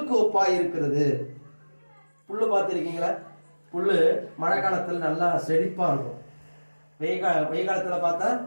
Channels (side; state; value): both; inverted; correlation -1.00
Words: ஒப்பாய் இருக்கிறது. புல்லு பார்த்திருக்கீங்களா? புல்லு மழை காலத்துல நல்லா செழிப்பா இருக்கும், வெயில் காலத்துல பார்த்தா